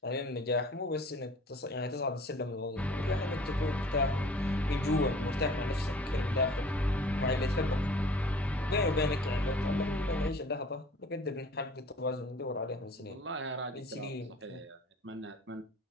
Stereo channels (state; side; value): normal; both; correlation 0.49